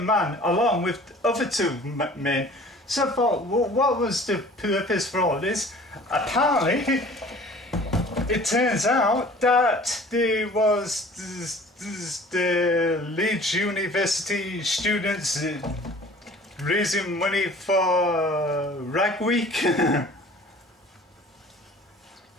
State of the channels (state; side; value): normal; both; correlation 0.47